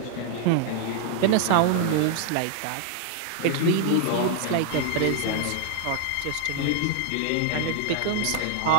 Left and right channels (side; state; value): both; different; correlation 0.00